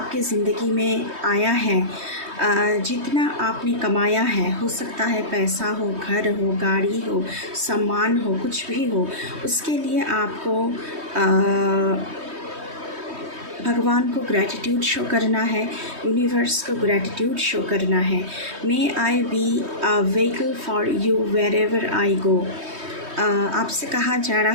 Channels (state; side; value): late; left; 3.2 ms